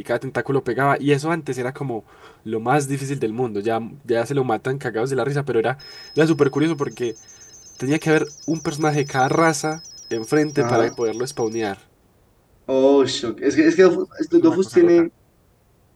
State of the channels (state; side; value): identical; both; correlation 1.00